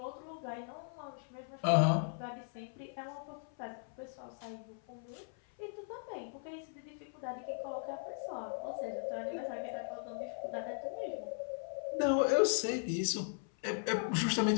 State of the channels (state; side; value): silent; right; 52 dB below the other